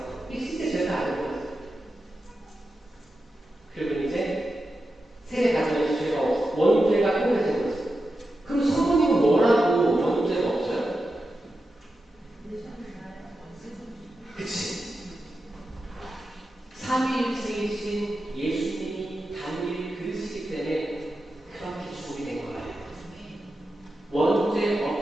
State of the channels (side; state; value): both; normal; correlation 0.90